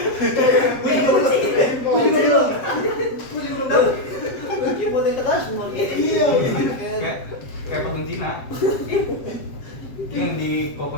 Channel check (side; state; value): right; late; 7.6 ms